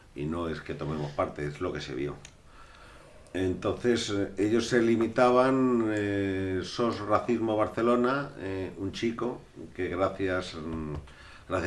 y no es que tomemos parte, es lo que se vio. Entonces ellos se limitaban, SOS Racismo Barcelona, un chico que gracias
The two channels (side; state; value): both; identical; correlation 1.00